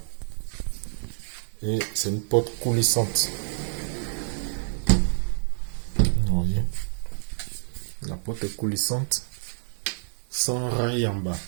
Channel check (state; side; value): silent; left; 60 dB below the other